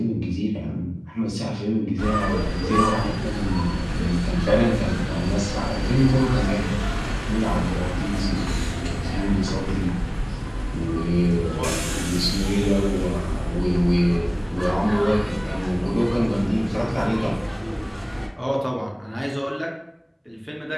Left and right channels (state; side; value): identical; both; correlation 1.00